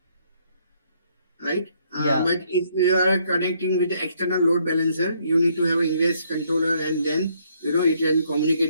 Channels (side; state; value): both; inverted; correlation -0.69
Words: right? Yeah. But if you are connecting with the external load balancer, you need to have an ingress controller, and then it can